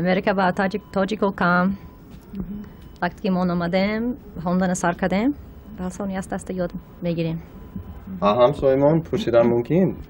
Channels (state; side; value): identical; both; correlation 1.00